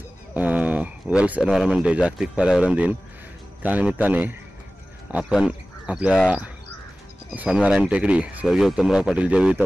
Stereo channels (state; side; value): normal; both; correlation 0.97